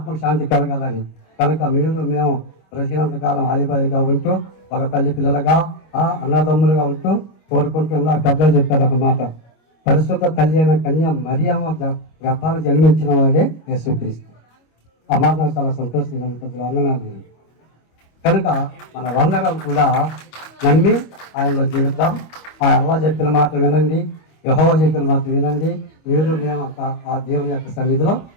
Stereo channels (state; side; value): late; right; 25 ms